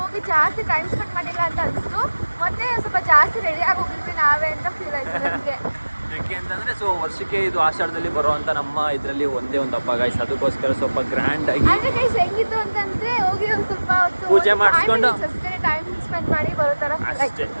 ಹೋಗಿ ಜಾಸ್ತಿ ಟೈಮ್ ಸ್ಪೆಂಡ್ ಮಾಡಿಲ್ಲ ಅಂತ ಅನಿಸ್ತು. ಮತ್ತೆ ಸ್ವಲ್ಪ ಜಾಸ್ತಿ ರೆಡಿ ಆಗಿ ಹೋಗಿದ್ವಿ ನಾವೇ ಅಂತ ಫೀಲ್ ಆಯ್ತು ನನಗೆ. ಯಾಕೆ ಅಂತಂದ್ರೆ ಸೊ ವರ್ಷಕ್ಕೆ ಇದು ಆಷಾಢದಲ್ಲಿ ಬರುವಂತ ನಮ್ಮ ಇದರಲ್ಲಿ ಒಂದೇ ಒಂದು ಹಬ್ಬ ಗೈಸ್. ಅದಕ್ಕೋಸ್ಕರ ಸ್ವಲ್ಪ ಗ್ರ್ಯಾಂಡ್ ಆಗಿ ಅಂದ್ರೆ ಗೈಸ್ ಹೆಂಗಿತ್ತು ಅಂತಂದ್ರೆ ಹೋಗಿ ಒಂದು ಸ್ವಲ್ಪ ಹೊತ್ತು ಪೂಜೆ ಮಾಡಿಸ್ಕೊಂಡು ಟೈಮ್ ಸ್ಪೆಂಡ್ ಮಾಡಿ ಬರೋ ತರ ಅಷ್ಟೇ.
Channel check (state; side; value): inverted; both; correlation -1.00